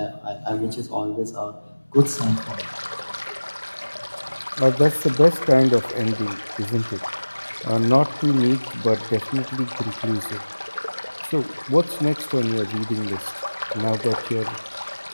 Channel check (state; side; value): inverted; both; correlation -1.00